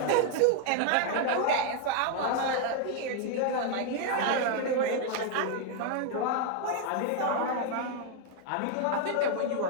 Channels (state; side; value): different; both; correlation 0.00